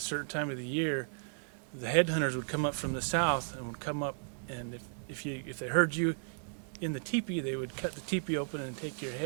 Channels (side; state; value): left; silent; 55 dB below the other